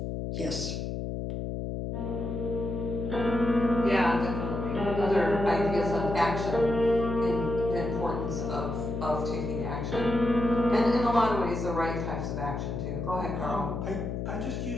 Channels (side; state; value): left; noise; hum, 4 dB below the sound